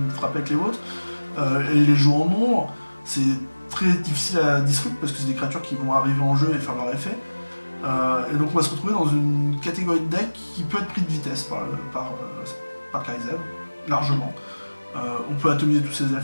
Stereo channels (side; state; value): both; inverted; correlation -1.00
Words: frappez avec les vôtres. Et les jouer en nombre, c'est très difficile à disrupt parce que c'est des créatures qui vont arriver en jeu et faire leur effet. Et donc on va se retrouver dans une catégorie de deck qui peut être pris de vitesse par Karizev, largement. On peut atomiser tous ses